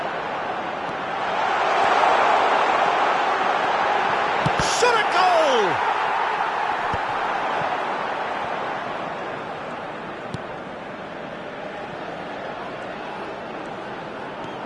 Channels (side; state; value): both; identical; correlation 1.00